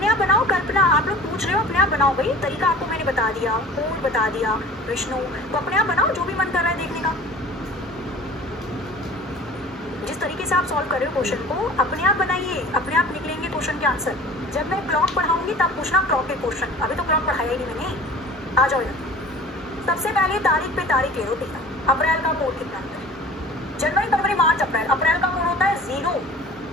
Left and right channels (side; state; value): both; normal; correlation 0.42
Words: आप बनाओ कल्पना, आप लोग पूछ रहे हो अपने आप बनाओ भाई, तरीका आपको मैंने बता दिया, कोड बता दिया विष्णु, तो अपने आप बनाओ जो भी मन कर रहा है देखने का। जिस तरीके से आप सॉल्व कर रहे हो क्वेश्चन को, अपने आप बनाइए, अपने आप निकलेंगे क्वेश्चन के आंसर। जब मैं क्लॉक पढ़ाऊंगी तब पूछना क्लॉक के क्वेश्चन, अभी तो क्लॉक पढ़ाया ही नहीं मैंने। आ जाओ इधर। सबसे पहले तारीख पे तारीख ले लो बेटा, अप्रैल का कोड कितना होता है? जनवरी फरवरी मार्च अप्रैल, अप्रैल का कोड होता है 0।